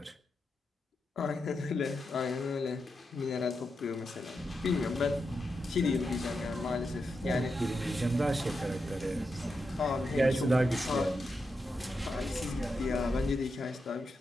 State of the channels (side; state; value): both; normal; correlation 0.86